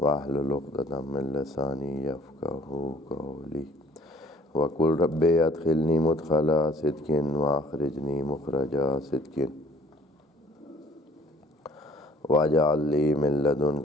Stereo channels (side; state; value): both; normal; correlation 0.55